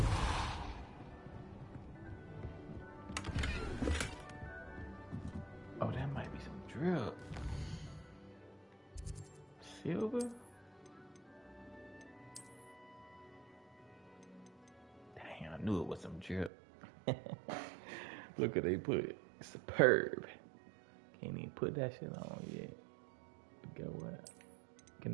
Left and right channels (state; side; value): drops out; left; at 16.5 s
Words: knew it was some drip. Look what they put. Superb. Can't even put that shit on yet. But guess what?